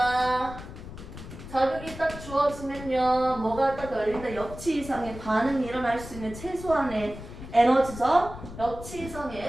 자극이 딱 주어지면요, 뭐가 딱 열린다? 역치 이상의 반응이 일어날 수 있는 최소한의 에너지죠. 역치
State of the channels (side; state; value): left; noise; rumble, 13 dB below the sound